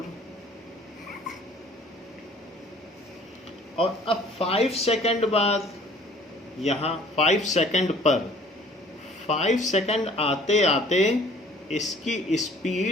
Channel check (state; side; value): normal; both; correlation 0.53